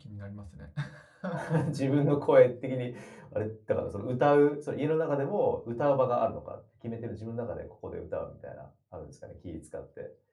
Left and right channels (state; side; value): identical; both; correlation 1.00